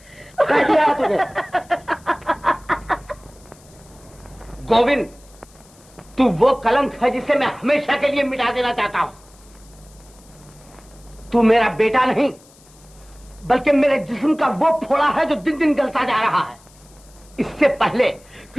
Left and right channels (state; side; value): noise; left; hiss, 27 dB below the sound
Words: कह दिया है तुझे। गोविंद, तू वो कलंक है जिसे मैं हमेशा के लिए मिटा देना चाहता हूं। तू मेरा बेटा नहीं, बल्कि मेरे जिस्म का वो फोड़ा है जो दिन दिन गलता जा रहा है। इससे पहले